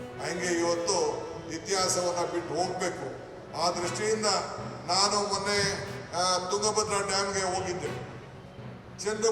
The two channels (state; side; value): identical; both; correlation 1.00